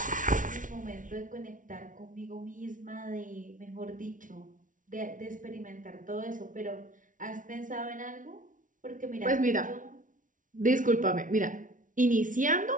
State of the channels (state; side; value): late; left; 0.38 ms